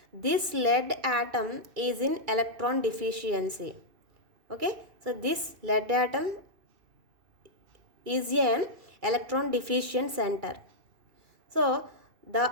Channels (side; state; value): left; late; 2.3 ms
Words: this lead atom is in electron deficiency. Okay, so this lead atom is an electron deficient center. So